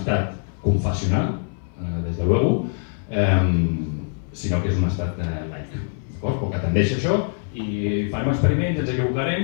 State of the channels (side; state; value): right; silent; 59 dB below the other